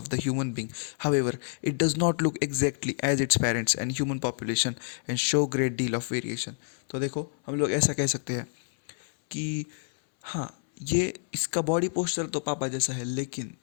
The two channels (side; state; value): right; silent; 59 dB below the other